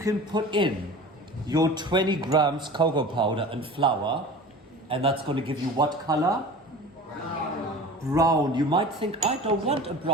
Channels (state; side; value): normal; both; correlation 0.38